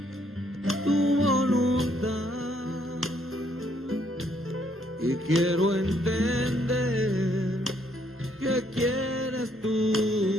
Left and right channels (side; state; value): both; normal; correlation 0.69